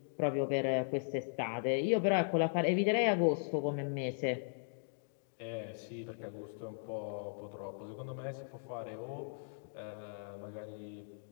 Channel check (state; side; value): silent; right; digital silence